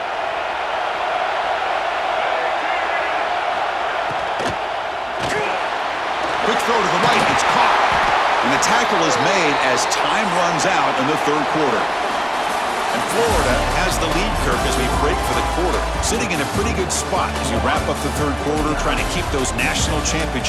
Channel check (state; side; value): identical; both; correlation 1.00